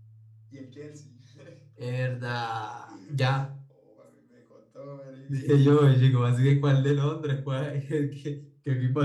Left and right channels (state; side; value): identical; both; correlation 1.00